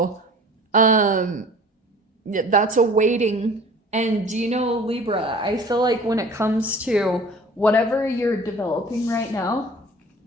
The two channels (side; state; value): both; normal; correlation 0.46